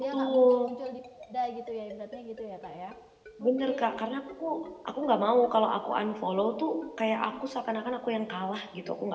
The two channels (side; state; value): both; identical; correlation 1.00